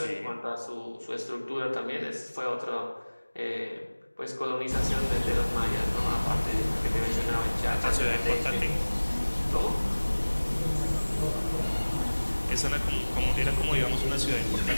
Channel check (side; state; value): both; inverted; correlation -1.00